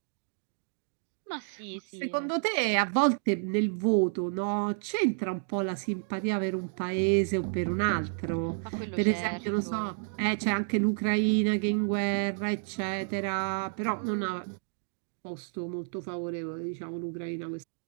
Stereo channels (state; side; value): silent; left; digital silence